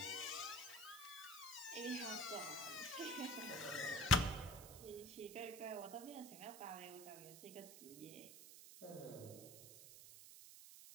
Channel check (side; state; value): right; noise; hiss, 13 dB below the sound